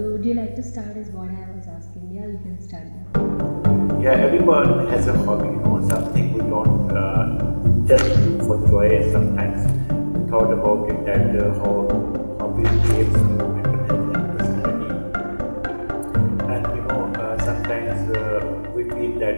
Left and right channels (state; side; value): inverted; both; correlation -1.00